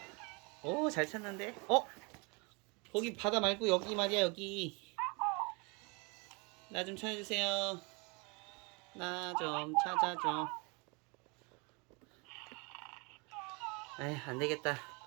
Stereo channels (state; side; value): quieter; left; 30.3 dB